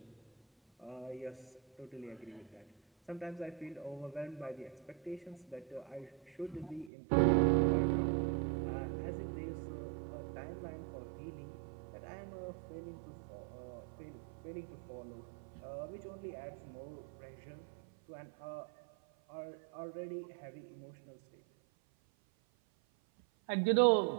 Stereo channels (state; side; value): drops out; left; at 6.9 s